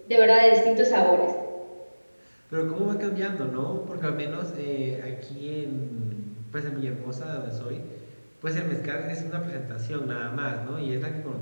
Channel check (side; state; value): both; inverted; correlation -1.00